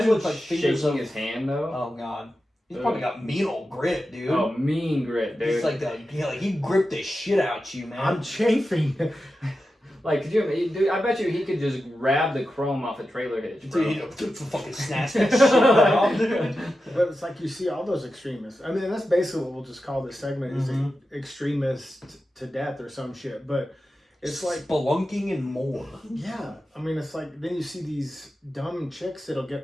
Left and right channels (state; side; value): normal; both; correlation 0.91